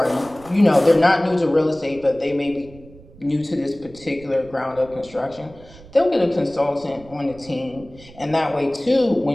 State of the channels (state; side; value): noise; right; rumble, 22 dB below the sound